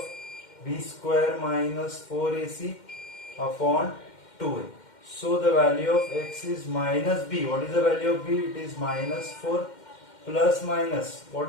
b square minus 4ac upon 2a. So the value of x is minus b. What is the value of b? It is minus 4 plus minus,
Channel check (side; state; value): right; late; 2.1 ms